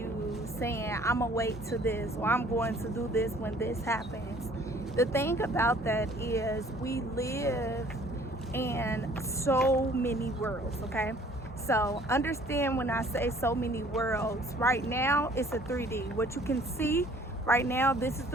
saying, I'm gonna wait to this, or I'm going to do this when this happens? The thing about that is we live in so many worlds, okay? So understand when I say so many worlds, right now it's a 3D. What you can see right now, this is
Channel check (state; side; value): normal; both; correlation 0.55